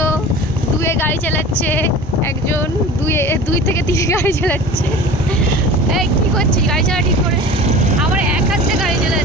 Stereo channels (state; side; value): normal; both; correlation 0.38